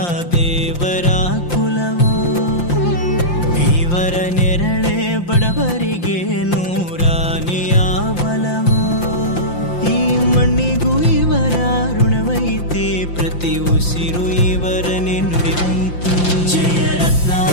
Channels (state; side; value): late; right; 5.8 ms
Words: ದೇವರ ಕುಲವೋ, ಇವರ ನೆರಳೆ ಬಡವರಿಗೆ ನೂರಾನೆಯ ಬಲವೋ. ಈ ಮಣ್ಣಿಗೂ ಇವರ ಋಣವೈತೆ, ಪ್ರತಿ ಉಸಿರು ಇವರನ್ನೇ ನುಡಿದೈತೆ. ಜಯ